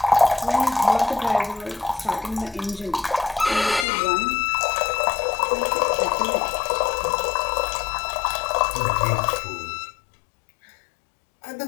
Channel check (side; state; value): right; drops out; at 3.9 s